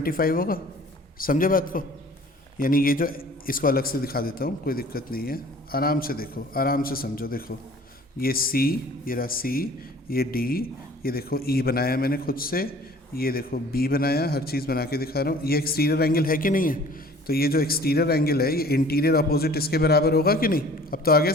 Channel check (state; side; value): normal; both; correlation 0.49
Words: होगा। समझे बात को? यानी ये जो, इसको अलग से दिखा देता हूँ, कोई दिक्कत नहीं है, आराम से देखो, आराम से समझो। देखो ये सी, ये रहा सी, ये डी, ये देखो ई बनाया मैंने खुद से, ये देखो बी बनाया, हर चीज़ बना के दिखा रहा हूँ। ये एक्सटीरियर एंगल है कि नहीं है? तो ये जो एक्सटीरियर एंगल है ये इंटीरियर अपोजिट इसके बराबर होगा कि नहीं? अब तो आ गया